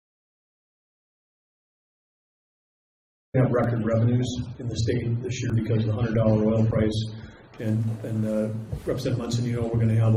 We have record revenues in the state this year because of the $100 oil price. And Representative Munson, you know, we're going to have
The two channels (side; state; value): both; identical; correlation 1.00